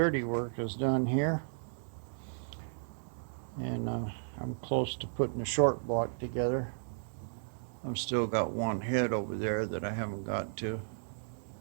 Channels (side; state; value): left; silent; digital silence